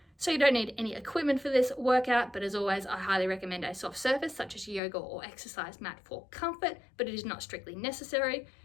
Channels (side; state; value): right; drops out; at 4.8 s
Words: So you don't need any equipment for this workout, but as always, I highly recommend a soft surface such as yoga or exercise mat for comfort, but it is not strictly necessary.